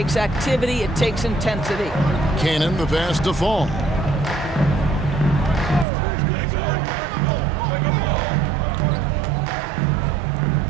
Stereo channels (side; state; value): left; drops out; at 5.9 s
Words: activity, it takes intensity. Cannon the pass to Fall.